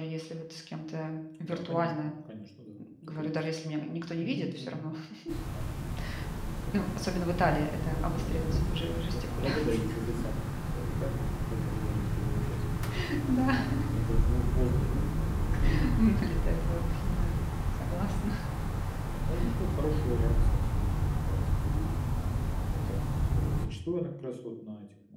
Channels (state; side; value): identical; both; correlation 1.00